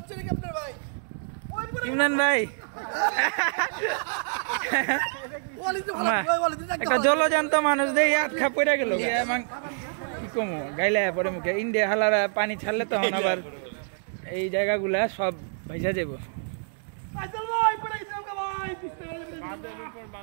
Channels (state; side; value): silent; left; digital silence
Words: নাকি আপনার ভাই? ইমরান ভাই একটা জলজান্ত মানুষ দিয়ে আটকা পড়ে গেল। কি কমো গাইলে পরে মুখে ইন্ডিয়া হালারা পানি ছাড়লে তখন আবার এই জায়গাগুলা সব ভাইসা যাব।